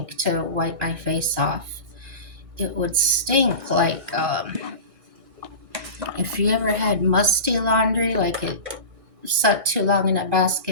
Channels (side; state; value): left; late; 1.6 ms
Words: to wipe my face off, it would stink like if you ever had musty laundry, like it sat too long in a